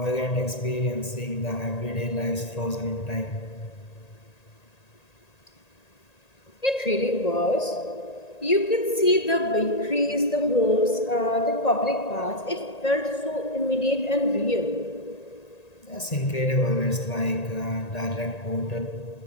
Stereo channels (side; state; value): right; late; 1.8 ms